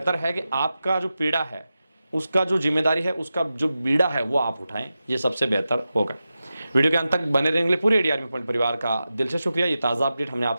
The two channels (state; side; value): inverted; both; correlation -0.92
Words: है कि आपका जो पीड़ा है, उसका जो जिम्मेदारी है, उसका जो बीड़ा है वो आप उठाएं, ये सबसे बेहतर होगा। वीडियो के अंत तक बने रहने के लिए पूरे AD आर्मी पॉइंट परिवार का दिल से शुक्रिया। ये ताज़ा अपडेट हमने